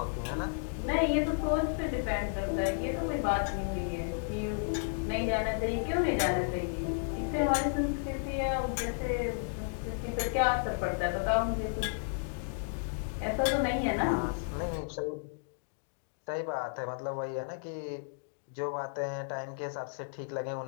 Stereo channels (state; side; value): silent; right; digital silence